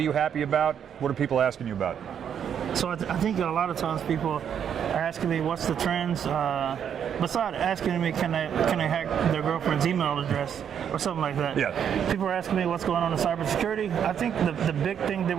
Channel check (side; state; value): left; quieter; 8.5 dB